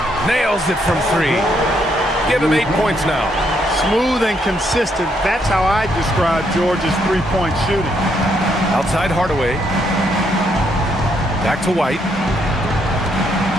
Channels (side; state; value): both; normal; correlation 0.74